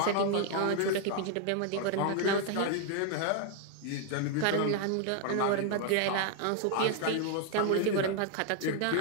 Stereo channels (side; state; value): both; different; correlation 0.00